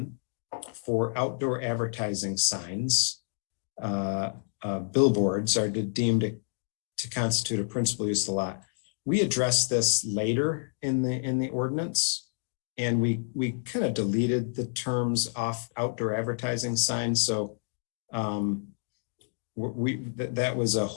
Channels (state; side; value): silent; right; digital silence